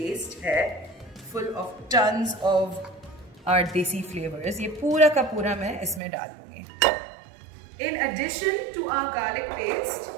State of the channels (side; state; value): left; drops out; at 6.0 s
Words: है full of tons of our desi flavours, ये पूरा का पूरा मैं इसमें डाल दूंगी. In addition to our garlic paste,